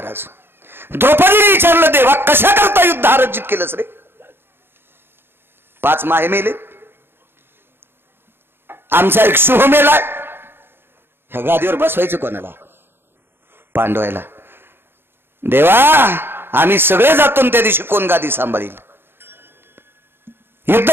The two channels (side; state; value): left; late; 0.11 ms